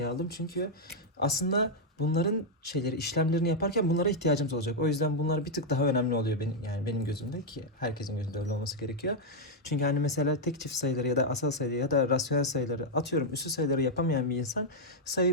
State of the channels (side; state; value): both; normal; correlation -0.02